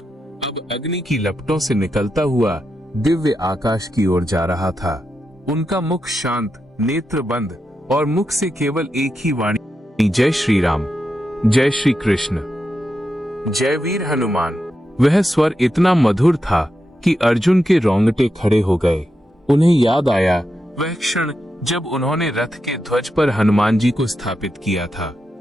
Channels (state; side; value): normal; both; correlation 0.87